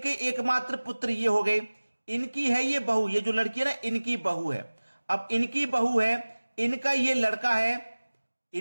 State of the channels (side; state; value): both; inverted; correlation -1.00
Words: एकमात्र पुत्र ये हो गए। इनकी है ये बहू, ये जो लड़की है ना, इनकी बहू है। अब इनकी बहू है, इनका ये लड़का है,